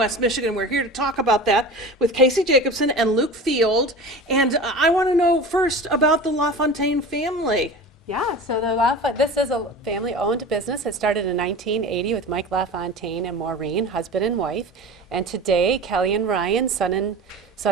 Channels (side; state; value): both; normal; correlation 0.34